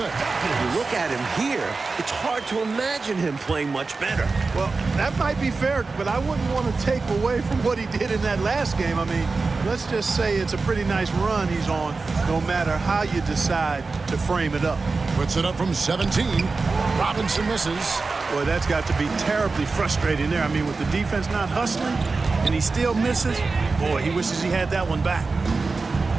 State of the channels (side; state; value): left; quieter; 4.0 dB